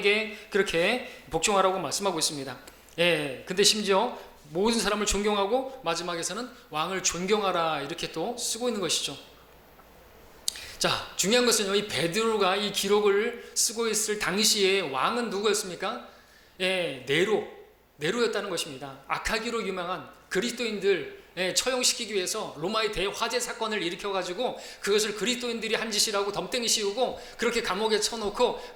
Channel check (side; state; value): both; identical; correlation 1.00